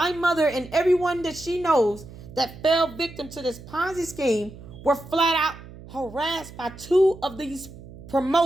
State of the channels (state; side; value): noise; right; hum, 17 dB below the sound